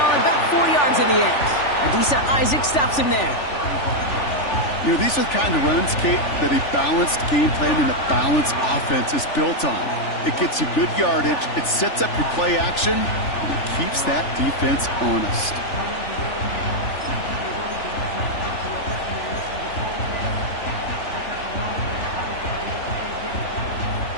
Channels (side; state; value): right; late; 3.4 ms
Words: it about 4 yards in the end. Adisa Isaac stops him there. You know, these are the kind of runs, Kate, that a balanced game plan and a balanced offense is built on. It gets you good yardage, it sets up your play action, and it keeps that defense honest.